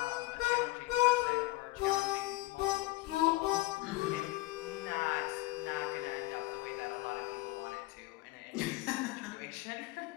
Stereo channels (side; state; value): right; quieter; 20.0 dB